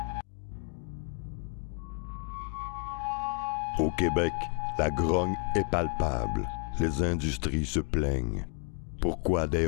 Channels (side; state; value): right; quieter; 38.4 dB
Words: Au Québec, la grogne est palpable. Les industries se plaignent. Pourquoi des